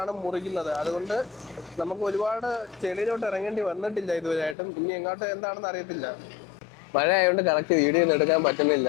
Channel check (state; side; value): drops out; right; at 4.5 s